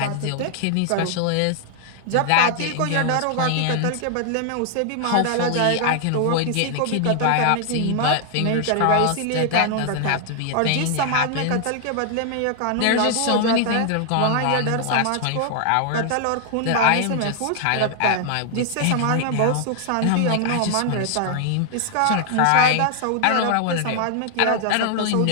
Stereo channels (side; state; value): both; different; correlation 0.00